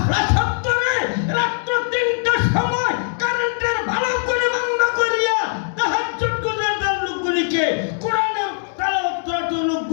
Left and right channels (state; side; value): silent; right; digital silence